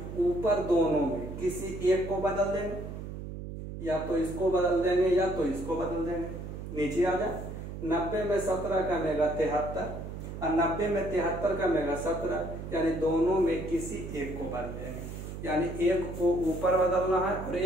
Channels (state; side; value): noise; right; hum, 8 dB below the sound